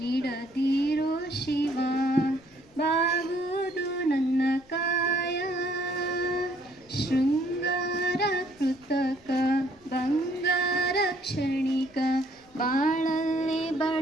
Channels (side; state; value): left; noise; rumble, 29 dB below the sound